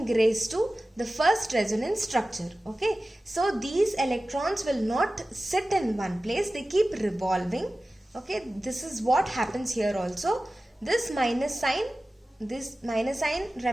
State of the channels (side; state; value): both; normal; correlation 0.96